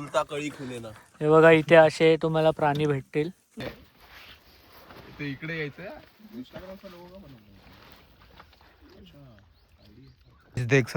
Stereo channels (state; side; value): identical; both; correlation 1.00